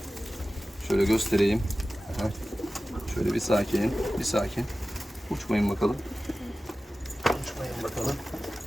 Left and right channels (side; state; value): both; normal; correlation 0.95